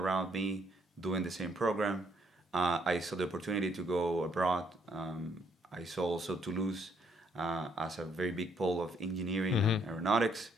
me doing the same program. I saw the opportunity to go abroad. I saw also Toulouse as a very big pole of engineering and aeronautics.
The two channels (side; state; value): both; normal; correlation 0.70